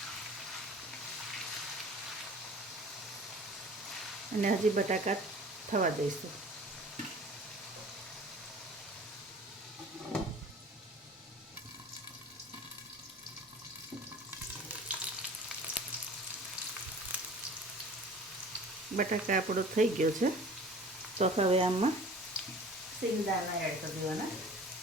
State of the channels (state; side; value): normal; both; correlation 0.44